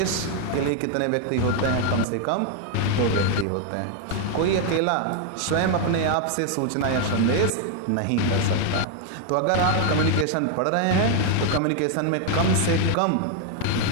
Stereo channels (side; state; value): both; different; correlation 0.00